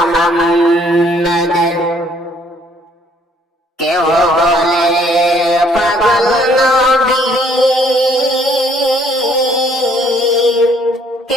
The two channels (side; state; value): both; normal; correlation 0.63